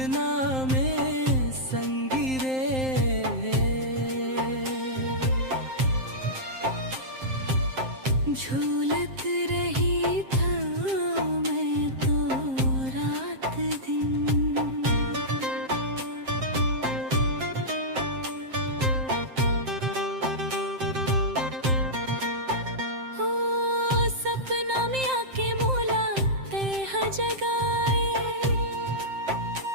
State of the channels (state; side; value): late; left; 7.6 ms